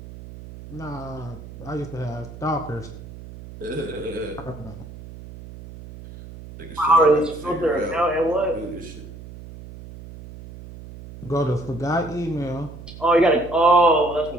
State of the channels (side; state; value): right; noise; hum, 15 dB below the sound